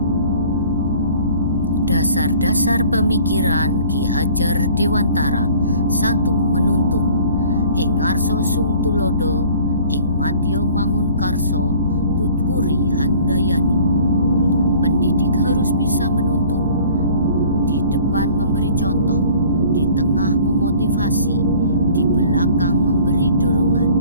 Dasar-dasar pemikiran Ki Hajar Dewantara. 1. Menuntun. Ing ngarsa sung tulodo, ing madya mangun karso, tutwuri handayani. Pendidik harus bisa menuntun, di depan memberi contoh, di tengah memotivasi, di belakang memberi dorongan.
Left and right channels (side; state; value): both; inverted; correlation -0.50